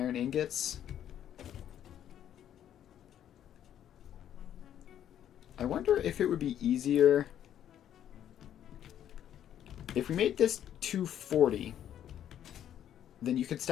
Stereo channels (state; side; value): quieter; right; 10.4 dB